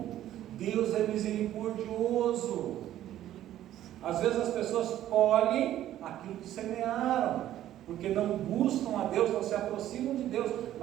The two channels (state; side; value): quieter; left; 12.6 dB